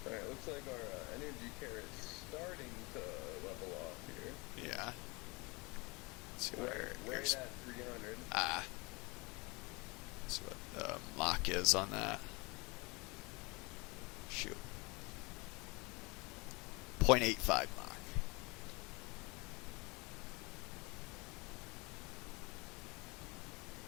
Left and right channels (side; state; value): right; quieter; 26.5 dB